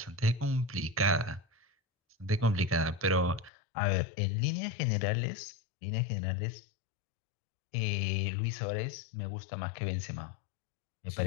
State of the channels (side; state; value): right; drops out; at 3.5 s